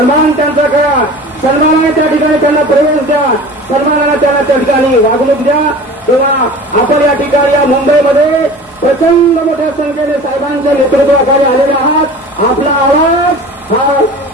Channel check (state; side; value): normal; both; correlation 0.39